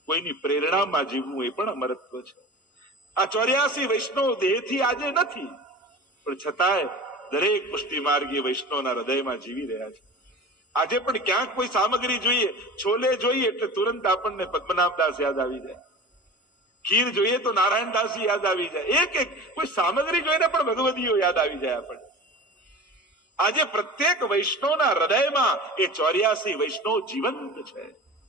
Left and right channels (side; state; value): both; normal; correlation 0.35